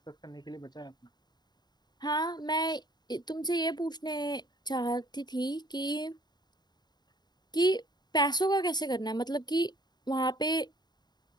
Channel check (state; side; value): late; right; 0.20 ms